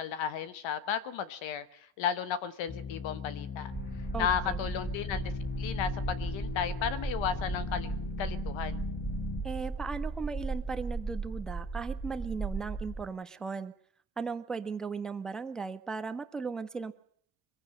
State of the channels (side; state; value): both; normal; correlation 0.43